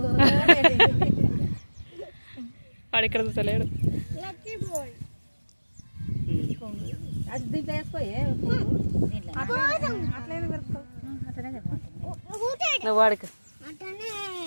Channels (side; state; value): both; inverted; correlation -1.00